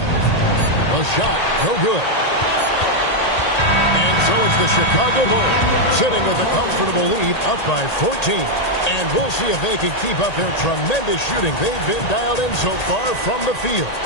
A shot, no good. And so it's the Chicago Bulls sitting with a comfortable lead up by 14. And we'll see if they can keep up their tremendous shooting. They've been dialed in so far from the field.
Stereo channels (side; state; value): right; late; 1.8 ms